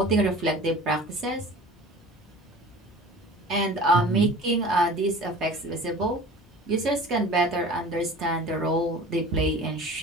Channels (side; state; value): both; normal; correlation 0.41